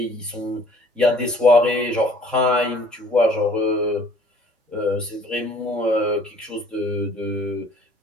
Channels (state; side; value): normal; both; correlation 0.55